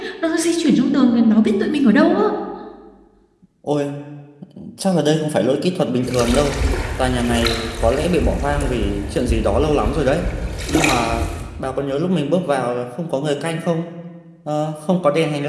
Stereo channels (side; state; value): both; identical; correlation 1.00